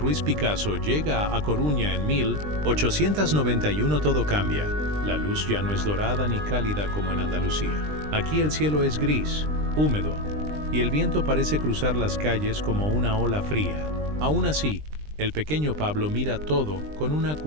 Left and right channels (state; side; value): late; left; 20 ms